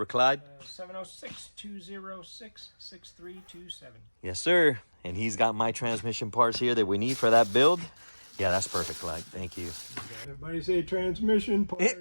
Clyde? 706-206-6327. Yes, sir. And he's got my transmission parts here that we need for that build. Yeah, that's perfect, Clyde. Thank you. Everybody say transmission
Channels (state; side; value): inverted; both; correlation -1.00